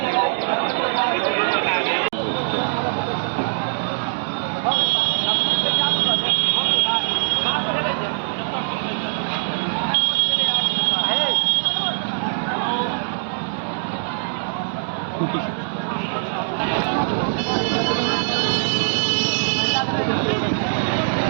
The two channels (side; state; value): left; silent; digital silence